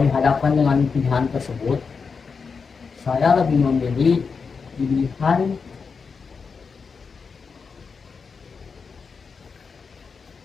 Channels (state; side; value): quieter; right; 5.3 dB